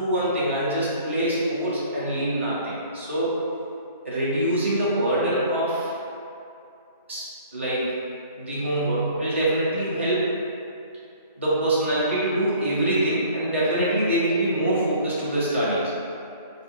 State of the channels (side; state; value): both; inverted; correlation -0.51